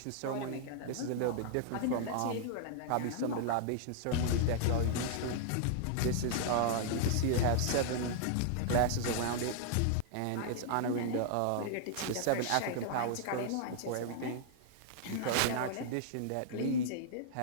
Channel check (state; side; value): different; both; correlation -0.01